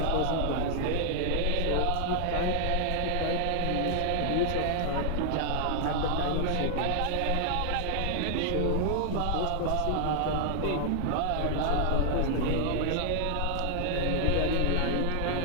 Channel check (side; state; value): both; different; correlation 0.00